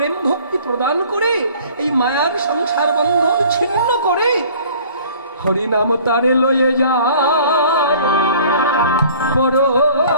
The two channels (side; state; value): both; inverted; correlation -0.50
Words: ভক্তি প্রদান করে, এই মায়ার সংসার বন্ধন ছিন্ন করে হরিনাম তারে লয়ে যায়